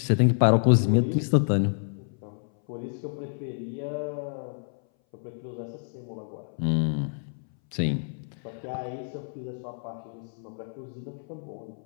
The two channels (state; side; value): silent; right; 59 dB below the other